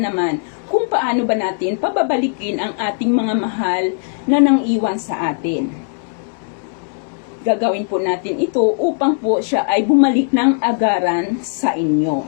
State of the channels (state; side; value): silent; right; 67 dB below the other